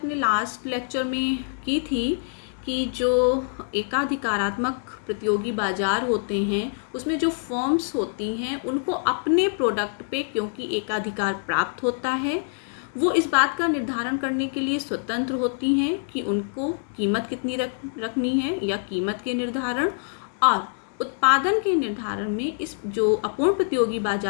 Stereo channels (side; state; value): right; silent; digital silence